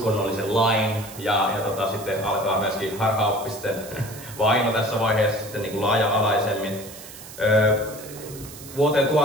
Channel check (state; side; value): noise; right; hiss, 15 dB below the sound